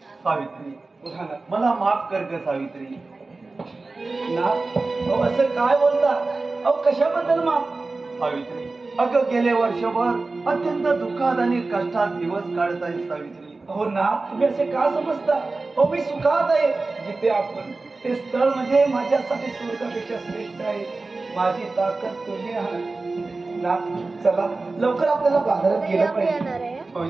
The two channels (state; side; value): quieter; left; 3.5 dB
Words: सावित्री, बोला ना. मला माफ कर ग सावित्री. ना अहो, असं काय बोलता? अहो, कशाबद्दल माफ? सावित्री, अगं गेले वर्षभर अत्यंत दुःखात आणि कष्टात दिवस काढत आहे सावित्री. हो ना, तुम्ही असे का समजता? हो, मी सुखात आहे. जिथे आपण ते स्थळ म्हणजे माझ्यासाठी स्वर्गापेक्षा श्रेष्ठ आहे. माझी ताकद तुम्ही आहात ना. चला लवकर आपल्याला बाजारात गेलं पाहिजे. होय